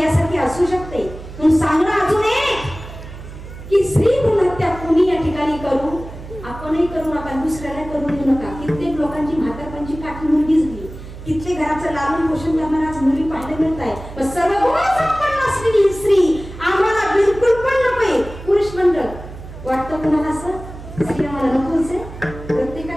यासारखी असू शकते. म्हणून सांगणं अजून एक की स्त्री भ्रूण हत्या कोणी या ठिकाणी करू आपणही करू नका, दुसऱ्याला करू देऊ नका. कित्येक लोकांची म्हातारपणची काठी मुलगी झाली, कित्येक घराचं लालन पोषण करणाऱ्या आज मुली पाहायला मिळत आहे. पण सर्व गुणसंपन्न असलेली स्त्री आम्हाला बिलकुल पण नकोय. पुरुष मंडळ वाटतं कोणाला असं, स्त्री आम्हाला नकोच आहे.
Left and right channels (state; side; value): noise; right; hum, 13 dB below the sound